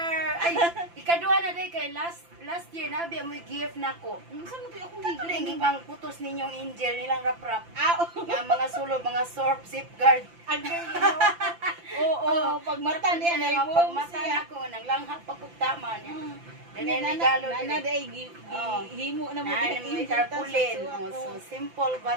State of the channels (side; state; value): left; late; 5.9 ms